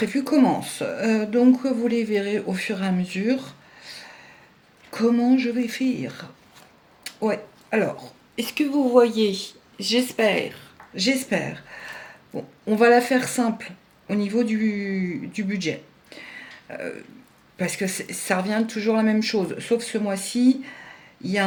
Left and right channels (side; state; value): both; identical; correlation 1.00